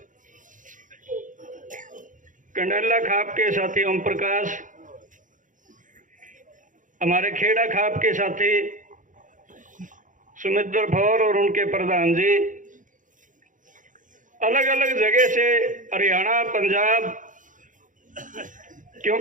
कंडला खाप के साथी ओम प्रकाश, हमारे खेड़ा खाप के साथी सुमित्र फौर और उनके प्रधान जी, अलग अलग जगह से हरियाणा, पंजाब,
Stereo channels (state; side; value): late; left; 0.38 ms